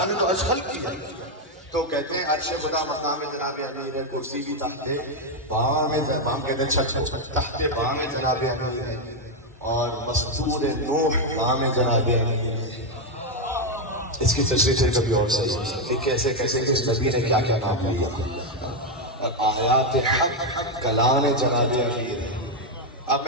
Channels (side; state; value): both; normal; correlation 0.04